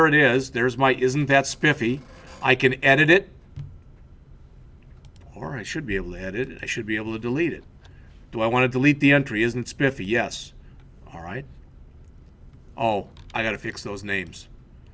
it is. There's my isn't that spiffy. I can edit it. Or I should be able to edit it. I should be able to delete it. Do I want to delete the entry? Isn't it spiffy? Yes. All right. Oh, I got to fix those names.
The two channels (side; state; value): both; identical; correlation 1.00